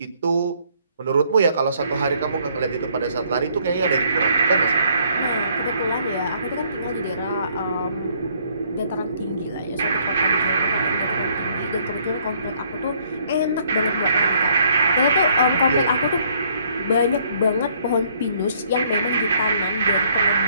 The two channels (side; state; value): both; inverted; correlation -0.65